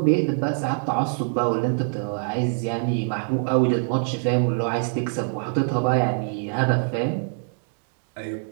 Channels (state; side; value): silent; left; 62 dB below the other